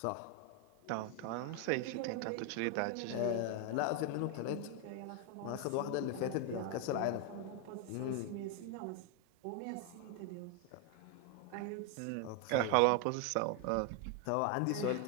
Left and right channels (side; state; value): both; different; correlation 0.01